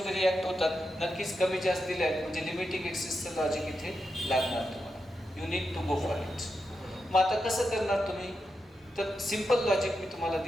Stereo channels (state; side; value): normal; both; correlation 0.87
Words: रिॲक्ट होतात। नक्कीच कमी जास्त दिले आहेत, म्हणजे लिमिटिंग एक्सेसचं लॉजिक इथे लागणार तुम्हाला। You need to go for it. मग आता कसं करणार तुम्ही? तर सिंपल लॉजिक मी तुम्हाला